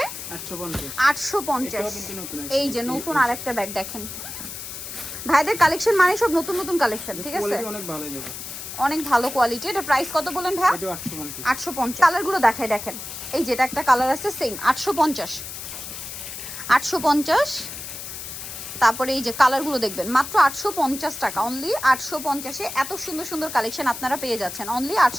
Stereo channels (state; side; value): noise; left; hiss, 9 dB below the sound